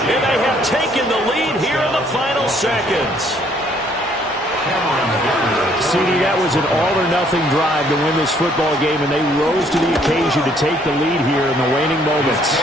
And they have taken the lead here in the final seconds. CD, that was an all-or-nothing drive to win this football game, and they rose to the occasion to take the lead here in the waning moments.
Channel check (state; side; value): normal; both; correlation 0.64